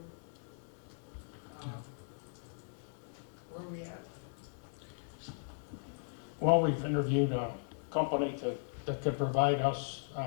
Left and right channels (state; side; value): silent; right; digital silence